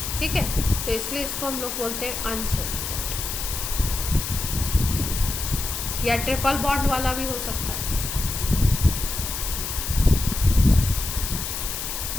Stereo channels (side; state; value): left; noise; hiss, 5 dB below the sound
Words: ठीक है, तो इसलिए इसको हम लोग बोलते हैं अनसेचुरेटेड, या ट्रिपल बॉन्ड वाला भी हो सकता है।